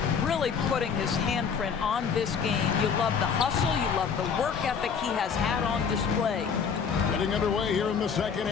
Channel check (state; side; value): quieter; right; 6.4 dB